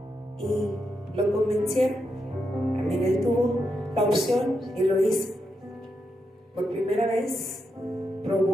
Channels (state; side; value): normal; both; correlation 0.84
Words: Y lo convencieron. También él tuvo la opción y lo hizo. Por primera vez